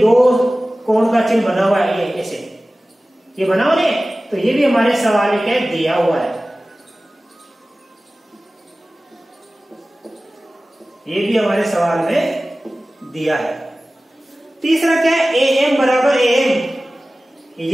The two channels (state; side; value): normal; both; correlation 0.97